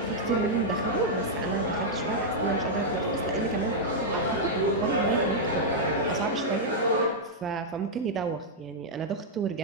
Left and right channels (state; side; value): normal; both; correlation -0.05